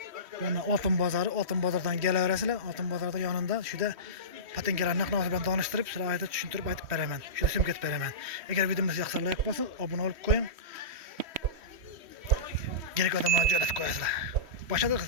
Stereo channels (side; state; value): left; late; 3.1 ms